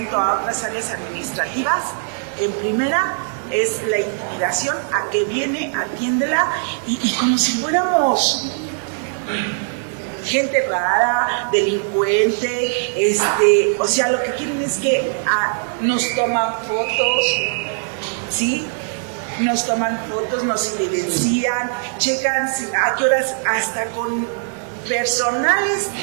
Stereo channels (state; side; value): silent; left; digital silence